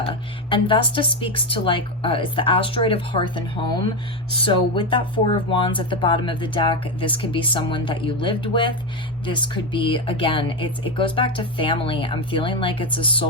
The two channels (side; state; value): both; normal; correlation 0.11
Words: and Vesta speaks to like, it's the asteroid of hearth and home. So with that Four of Wands at the bottom of the deck, this could be someone that you lived with. This could be, again, it goes back to family. I'm feeling like it's a